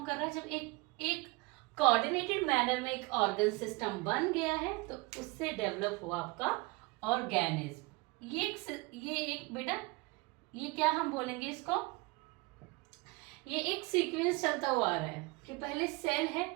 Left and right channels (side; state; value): left; quieter; 25.3 dB